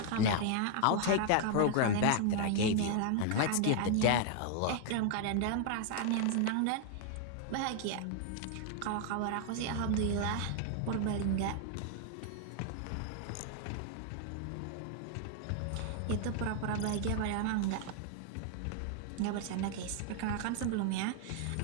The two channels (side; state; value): both; different; correlation 0.00